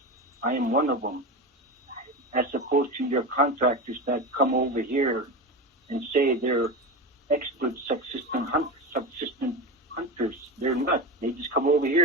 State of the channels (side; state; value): both; normal; correlation 0.21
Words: I am one of them, as opposed to your contractors that come over here and say they're expert subsistence hunters. They're not. They just come over